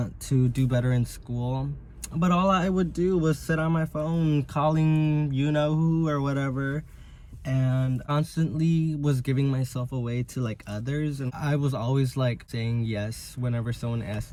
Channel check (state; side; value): identical; both; correlation 1.00